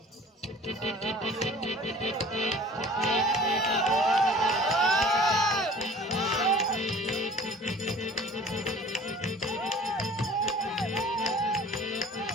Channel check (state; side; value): normal; both; correlation 0.47